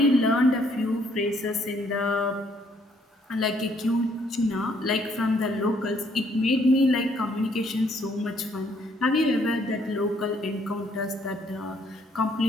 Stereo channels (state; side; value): normal; both; correlation 0.67